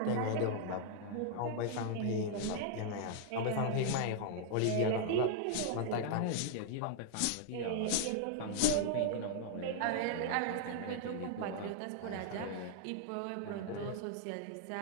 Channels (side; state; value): both; different; correlation 0.00